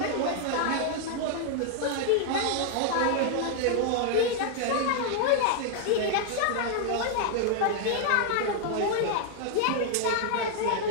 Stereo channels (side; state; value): both; different; correlation 0.00